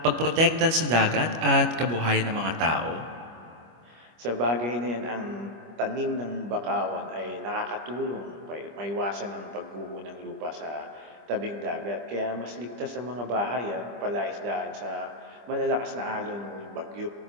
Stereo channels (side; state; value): left; late; 25 ms